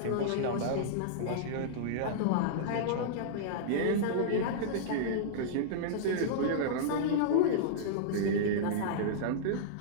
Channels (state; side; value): different; both; correlation -0.02